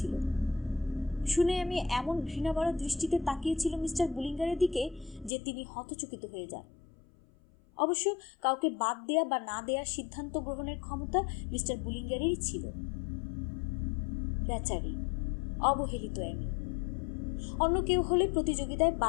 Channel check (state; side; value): drops out; right; at 5.3 s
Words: শুনে আমি এমন ঘৃণাভরা দৃষ্টিতে তাকিয়েছিল মিস্টার বুলিঙ্গারের দিকে যে তিনি হতচকিত হয়ে যান। অবশ্য কাউকে বাদ দেয়া বা না দেয়ার সিদ্ধান্ত গ্রহণের ক্ষমতা মিস্টার বুলিঙ্গারেরই ছিল। বেচারি, অবহেলিত এমি। অন্য কেউ হলে প্রতিযোগিতায়